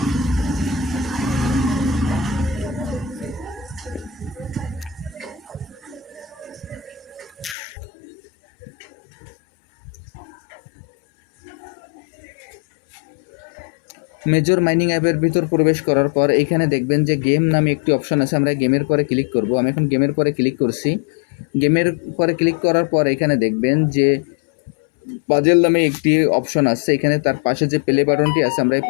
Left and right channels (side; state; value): right; drops out; at 7.6 s